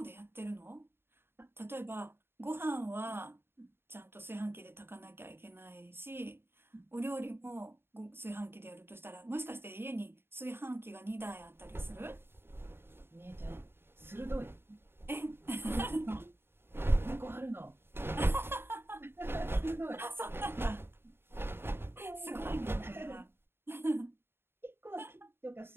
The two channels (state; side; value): late; left; 0.11 ms